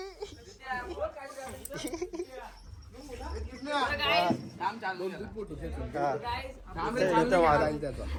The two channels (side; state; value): both; identical; correlation 1.00